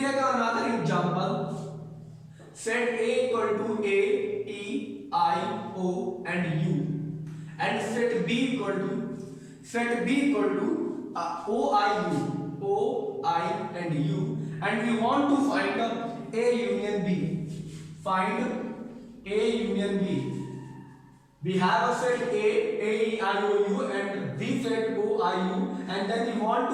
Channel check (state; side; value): identical; both; correlation 1.00